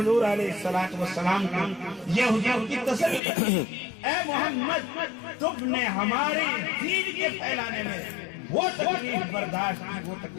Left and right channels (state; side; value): drops out; right; at 3.2 s